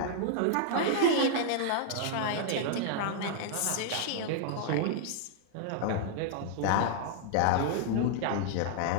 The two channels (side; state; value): both; different; correlation -0.01